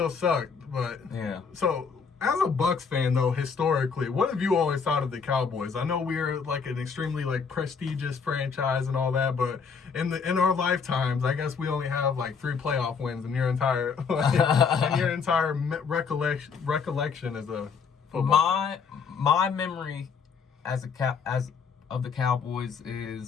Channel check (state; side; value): quieter; right; 5.8 dB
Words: sucked. But, yeah. So, as a Bucs fan, though, historically, what have you always thought of the Cowboys? I know we're like an extremely prestigious franchise and all that, but in our lifetimes, I guess we only have 3 playoff wins in your entire recollection as a football. My memory as of the Cowboys